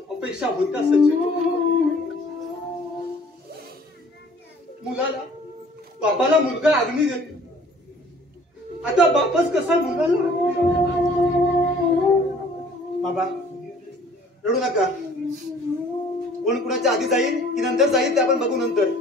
अपेक्षा होत्या सचिन. मुलाला बापाला मुलगा अग्नी देतो. आता बापच कसा मुलाला? बाबा रडू नका. कोण कुणाच्या आधी जाईल की नंतर जाईल ते आपण बघू नंतर.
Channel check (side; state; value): both; normal; correlation 0.54